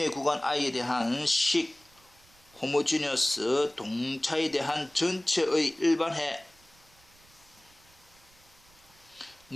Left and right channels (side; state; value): right; noise; rumble, 29 dB below the sound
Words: 구간 i에 대한 식 호모지니어스 동차에 대한 전체의 일반해는